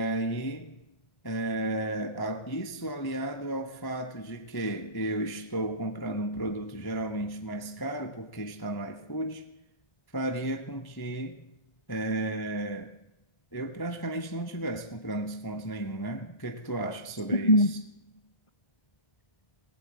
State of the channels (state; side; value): late; right; 1.1 ms